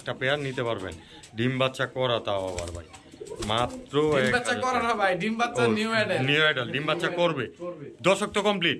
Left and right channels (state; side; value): identical; both; correlation 1.00